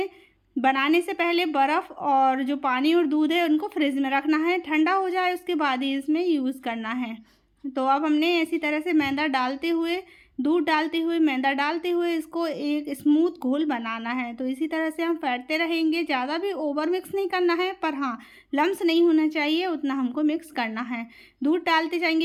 बनाने से पहले बर्फ़ और जो पानी और दूध है उनको फ्रिज में रखना है, ठंडा हो जाए उसके बाद ही इसमें यूज़ करना है। तो अब हमने इसी तरह से मैदा डालते हुए, दूध डालते हुए, मैदा डालते हुए इसको एक स्मूथ घोल बनाना है। तो इसी तरह से हम फेंटते रहेंगे, ज़्यादा भी ओवर मिक्स नहीं करना है, पर हाँ लम्स नहीं होना चाहिए उतना हमको मिक्स करना है। दूध डालते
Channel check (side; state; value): both; identical; correlation 1.00